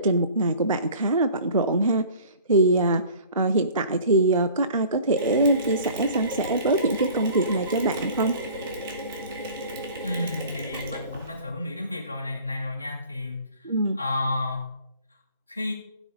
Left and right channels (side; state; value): both; inverted; correlation -0.46